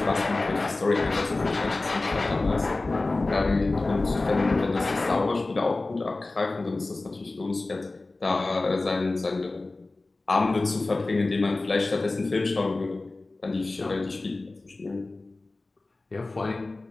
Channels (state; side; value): quieter; right; 3.2 dB